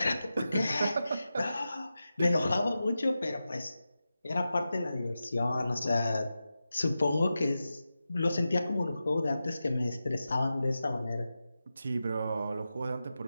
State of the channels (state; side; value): inverted; both; correlation -0.92